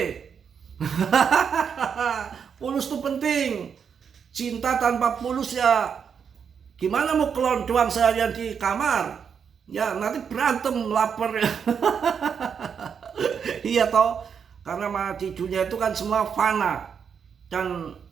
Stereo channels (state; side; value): quieter; left; 7.0 dB